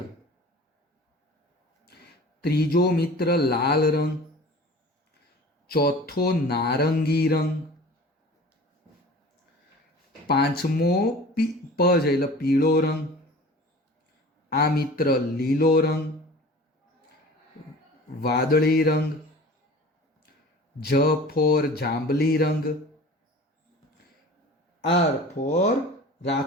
ત્રીજો મિત્ર લાલ રંગ, ચોથો નારંગી રંગ, પાંચમો પ છે એટલે પીળો રંગ, આ મિત્ર લીલો રંગ, વાદળી રંગ, જ ફોર જાંબલી રંગ, આર ફોર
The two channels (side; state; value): both; normal; correlation 0.41